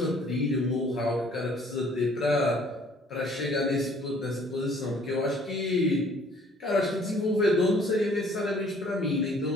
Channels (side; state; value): both; normal; correlation 0.58